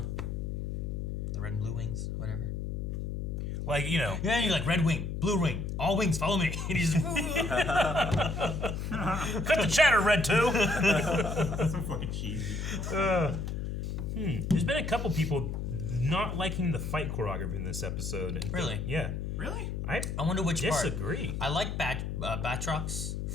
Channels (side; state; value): left; noise; hum, 3 dB below the sound